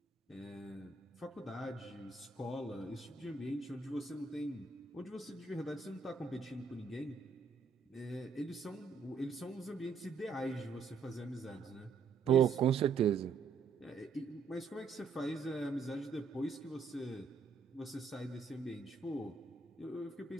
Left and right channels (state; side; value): quieter; left; 5.0 dB